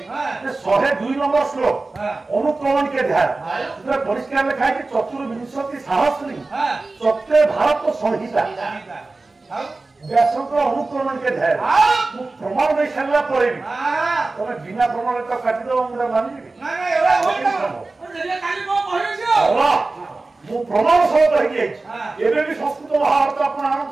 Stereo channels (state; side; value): quieter; left; 3.4 dB